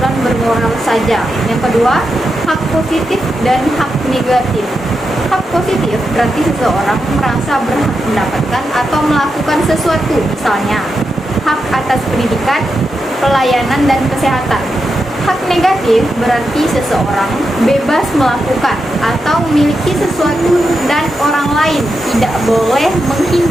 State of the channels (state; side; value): normal; both; correlation 0.87